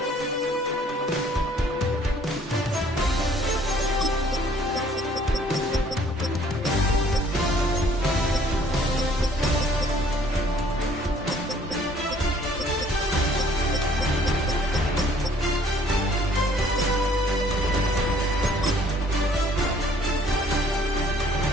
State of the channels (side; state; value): both; normal; correlation 0.59